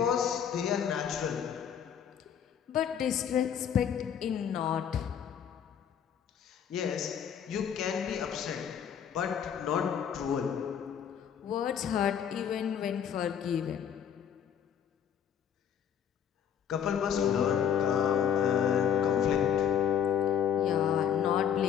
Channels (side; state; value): right; quieter; 8.5 dB